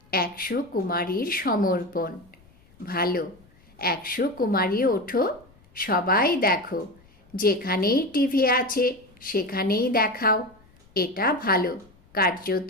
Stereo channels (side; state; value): left; noise; rumble, 29 dB below the sound